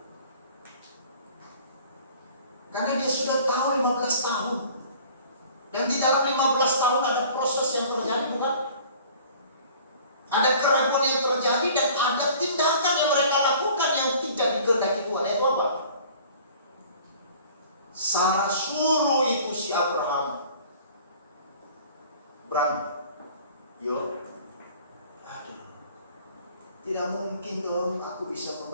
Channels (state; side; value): inverted; both; correlation -0.49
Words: karena dia sudah tahu 15 tahun, dan di dalam 15 tahun ada proses yang terjadi, bukan? Ada keraguan yang terjadi dan ada tindakan yang mereka lakukan yang tidak dikehendaki Tuhan. Itu apa? Sarah suruh itu si Abraham, yo, aduh, tidak mungkin dong aku bisa